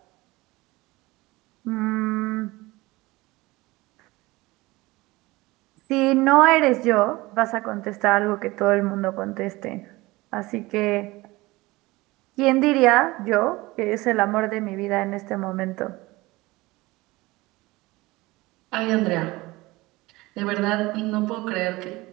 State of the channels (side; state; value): left; quieter; 20.9 dB